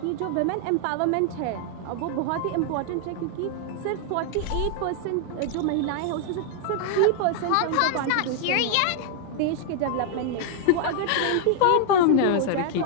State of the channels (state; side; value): different; both; correlation 0.00